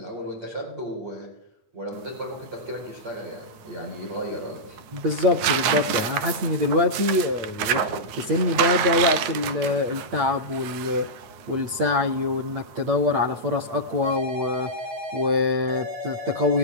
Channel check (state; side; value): late; left; 9.5 ms